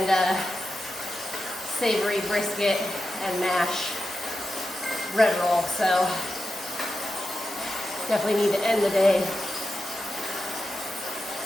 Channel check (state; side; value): normal; both; correlation 0.90